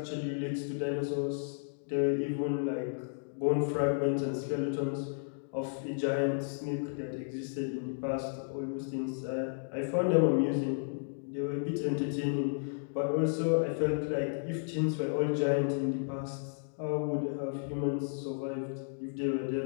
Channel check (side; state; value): right; silent; digital silence